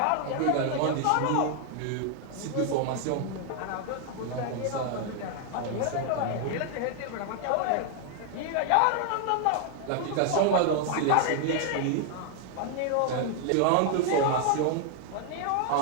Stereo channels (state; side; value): different; both; correlation 0.00